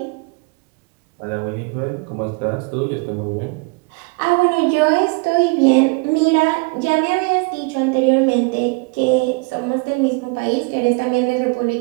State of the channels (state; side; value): quieter; left; 30.2 dB